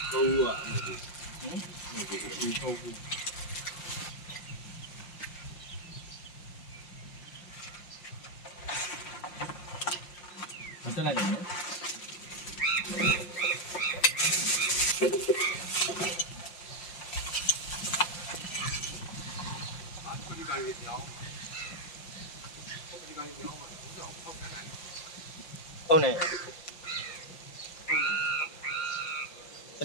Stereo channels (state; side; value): late; right; 5.7 ms